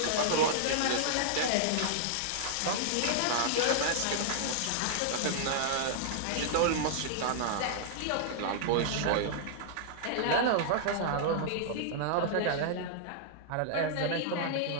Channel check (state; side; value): different; both; correlation -0.01